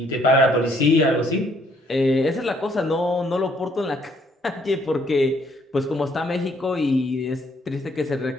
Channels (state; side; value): normal; both; correlation 0.66